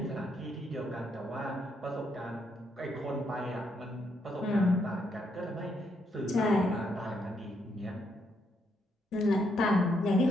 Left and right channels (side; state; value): both; normal; correlation 0.76